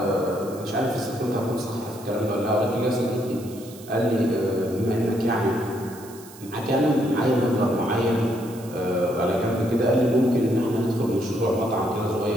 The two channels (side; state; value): right; noise; hiss, 19 dB below the sound